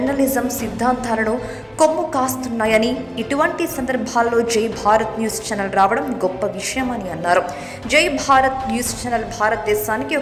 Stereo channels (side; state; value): both; identical; correlation 1.00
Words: సిద్ధాంతాలను కొమ్ము కాస్తున్నాయని, ఇటువంటి సందర్భాల్లో జై భారత్ న్యూస్ ఛానల్ రావడం గొప్ప విషయమని అన్నారు. జై భారత్ న్యూస్ ఛానల్ భారతదేశానికి